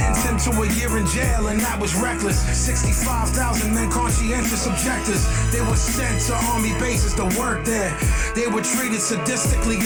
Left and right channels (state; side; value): identical; both; correlation 1.00